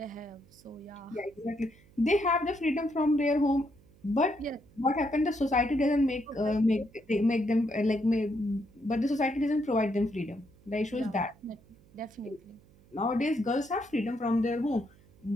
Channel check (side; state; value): right; noise; hum, 27 dB below the sound